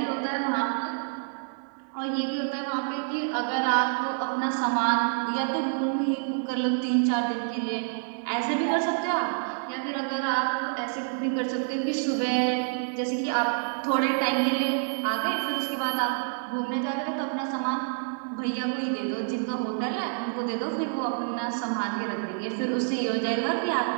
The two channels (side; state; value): left; silent; digital silence